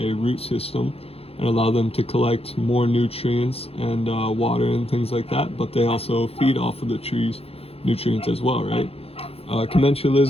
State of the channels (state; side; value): late; right; 0.28 ms